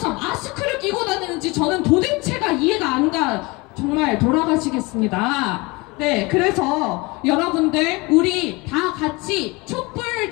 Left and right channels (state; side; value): quieter; right; 24.9 dB